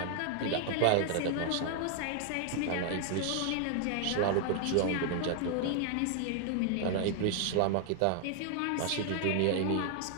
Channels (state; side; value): different; both; correlation 0.00